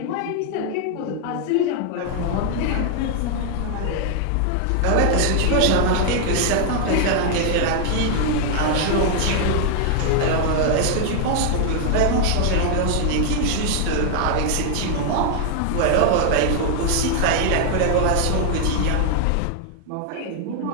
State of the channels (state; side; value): different; both; correlation 0.00